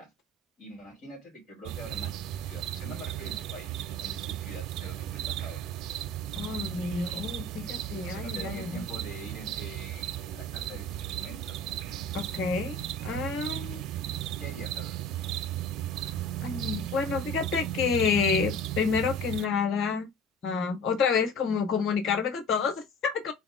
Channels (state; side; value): normal; both; correlation 0.40